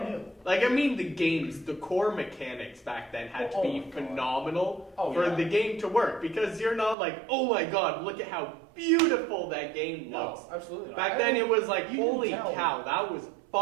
new. Like I mean, the games, the core mechanics back then had to Oh be my God. phenomenal Oh, for yeah. the game to work because you're not like, oh my god, look at how beautiful that game looks. No, absolutely not. Back I then mean, it was like, you can holy tell. cow, that was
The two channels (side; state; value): left; drops out; at 7.0 s